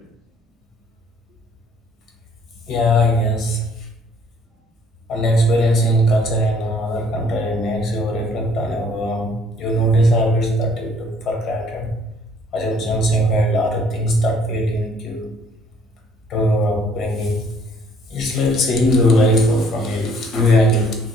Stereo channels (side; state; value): both; normal; correlation 0.60